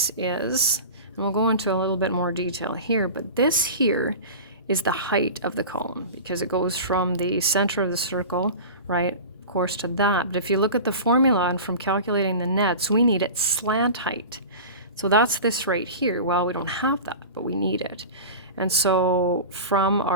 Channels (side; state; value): both; inverted; correlation -0.32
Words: is, and we'll go into a little bit more detail here, but this here is the height of the column because it goes from the center of the circle, right, of course, to that. But if you look at the formula and from calculating the nets, we need its slant height. So that's this right here. Well, we don't have that, but we need it. And so from